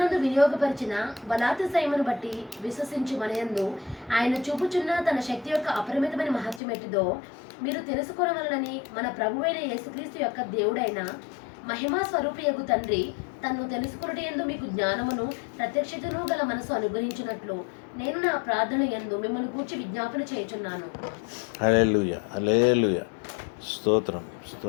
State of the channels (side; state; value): right; drops out; at 6.6 s